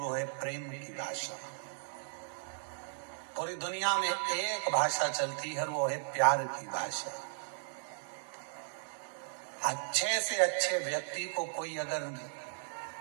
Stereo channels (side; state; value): left; silent; digital silence